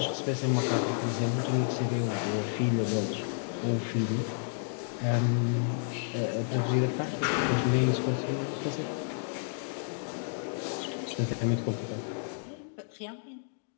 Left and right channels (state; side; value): silent; right; digital silence